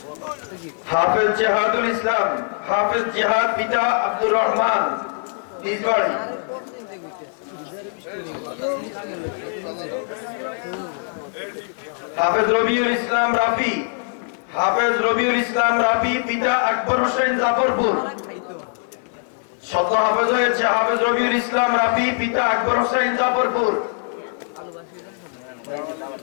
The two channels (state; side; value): silent; right; digital silence